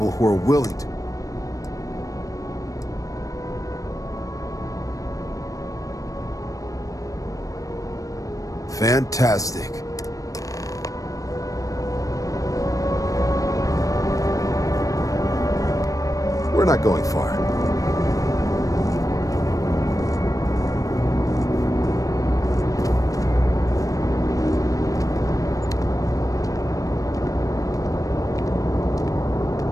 who are willing to. Fantastic. We're not going far.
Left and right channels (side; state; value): right; late; 0.16 ms